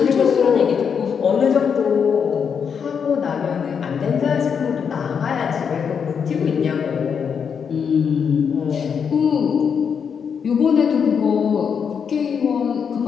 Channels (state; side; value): quieter; right; 6.9 dB